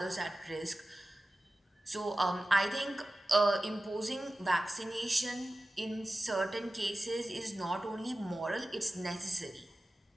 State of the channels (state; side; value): normal; both; correlation 0.95